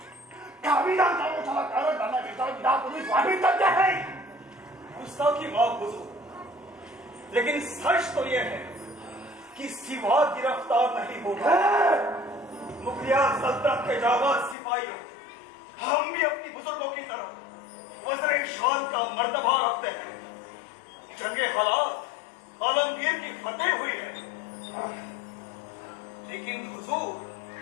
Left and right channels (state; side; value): drops out; right; at 14.6 s